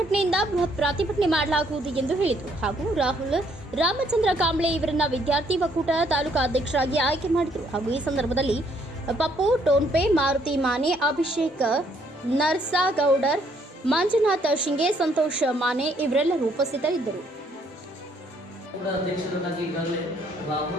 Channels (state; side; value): normal; both; correlation 0.68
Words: ಬೃಹತ್ ಪ್ರತಿಭಟನೆ ಮಾಡಲಾಗುವುದು ಎಂದು ಹೇಳಿದರು. ಹಾಗೂ ರಾಹುಲ್ ರಾಮಚಂದ್ರ ಕಾಂಬ್ಳೆ ಇವರನ್ನ ವಿದ್ಯಾರ್ಥಿ ಒಕ್ಕೂಟ ತಾಲೂಕಾ ಅಧ್ಯಕ್ಷರಾಗಿ ಆಯ್ಕೆ ಮಾಡಿದರು. ಹಾಗೂ ಈ ಸಂದರ್ಭದಲ್ಲಿ ಪಪ್ಪು ಟೋನ್ಪೆ, ಮಾರುತಿ ಮಾನೆ, ಅಭಿಷೇಕ್ ನರ್ಸಾಗೌಡರ್, ಮಂಜುನಾಥ್ ಶಿಂಗೆ, ಸಂತೋಷ್ ಮಾನೆ ಇವರೆಲ್ಲರೂ ಉಪಸ್ಥಿತರಿದ್ದರು. ಅಧ್ಯಕ್ಷರಾಗಿ ಈಗಾಗಲೇ